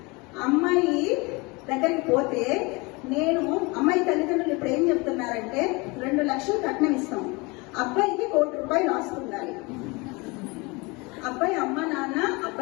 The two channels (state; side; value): quieter; right; 26.4 dB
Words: అమ్మాయి దగ్గరికి పోతే అమ్మాయి తల్లిదండ్రులు ఇప్పుడు ఏం చెప్తున్నారంటే 2 లక్షలు కట్నం ఇస్తాం, అబ్బాయికి 1 కోటి రూపాయలు ఆస్తుండాలి. అబ్బాయి అమ్మ నాన్న